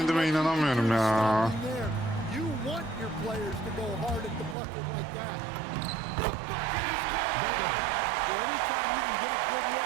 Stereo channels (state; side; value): drops out; left; at 4.5 s